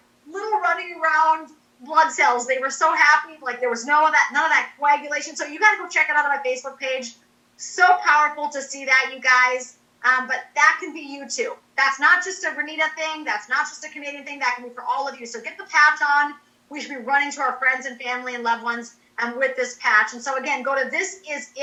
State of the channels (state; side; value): identical; both; correlation 1.00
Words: little running around blood cells. They were so happy. Like, there was none of that coagulation. So you got to go check it out on my Facebook page. So powerful to see that, you guys. But that can be you too. That's not just a Renita thing. That's not just a Canadian thing. That can be for all of you. So get the patch on. We should be running to our friends and family and loved ones with this patch. And so again, go to